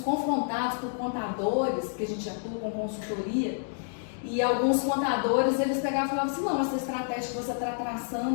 por contadores, que a gente atua com consultoria, e alguns contadores, eles pegavam e falavam assim, não, essa estratégia que você está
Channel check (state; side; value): silent; right; digital silence